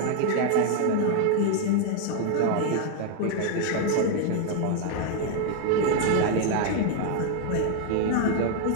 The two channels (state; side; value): different; both; correlation 0.00